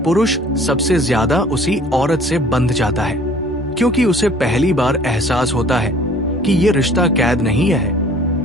सबसे ज्यादा उसी औरत से बंध जाता है। क्योंकि उसे पहली बार एहसास होता है कि ये रिश्ता कैद नहीं है,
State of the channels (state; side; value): normal; both; correlation 0.52